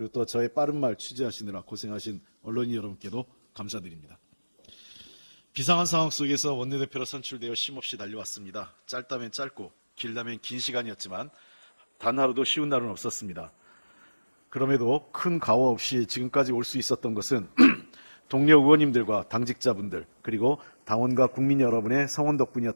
또 저의 빠른 말 취재하시느라 고생하신 언론인 여러분께도 감사드립니다. 비상한 상황 속에서 원내대표로 선출되어 쉼없이 달려왔습니다. 짧다면 짧고 길다면 긴 시간이었지만 단 하루도 쉬운 날은 없었습니다. 그럼에도 큰 과오 없이 지금까지 올 수 있었던 것은 동료 의원님들과 당직자분들 그리고 당원과 국민 여러분의 성원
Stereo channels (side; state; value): both; inverted; correlation -1.00